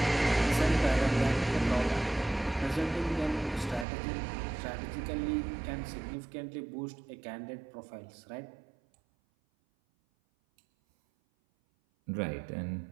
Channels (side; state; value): left; drops out; at 3.9 s